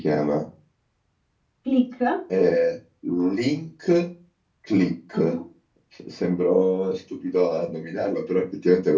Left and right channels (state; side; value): identical; both; correlation 1.00